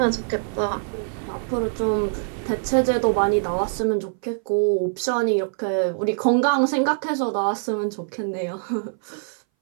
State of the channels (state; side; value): silent; left; 60 dB below the other